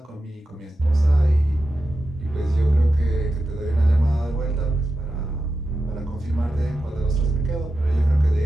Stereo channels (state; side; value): normal; both; correlation 0.91